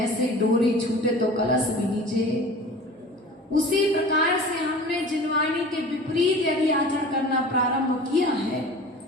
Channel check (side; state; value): both; normal; correlation 0.40